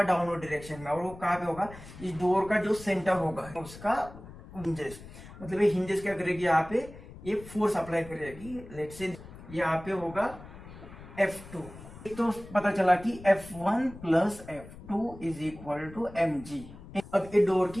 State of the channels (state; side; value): noise; left; rumble, 16 dB below the sound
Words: डाउनवर्ड डायरेक्शन में, और वो कहाँ पे होगा, इस डोर का जो सेंटर होगा उसका हिंजेस, मतलब ये हिंजेस क्या करेगी, यहाँ पे ये फोर्स अप्लाई करेगी। लेट्स से यहाँ पे होगा F2। तो पता चला कि F1 plus F2 is equal to mg। अब ये डोर